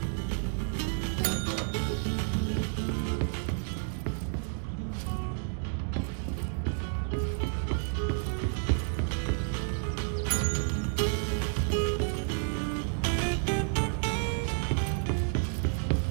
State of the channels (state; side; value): silent; left; 57 dB below the other